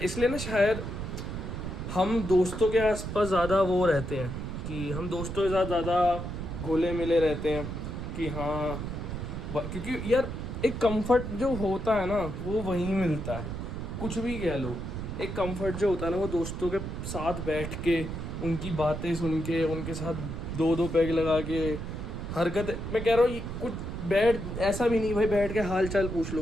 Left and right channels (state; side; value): noise; right; rumble, 6 dB below the sound